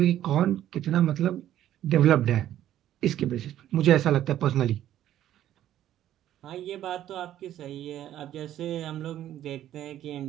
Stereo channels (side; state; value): left; quieter; 12.1 dB